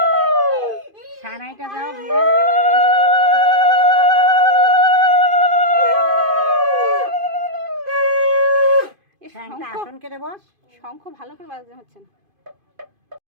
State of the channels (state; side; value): late; left; 2.5 ms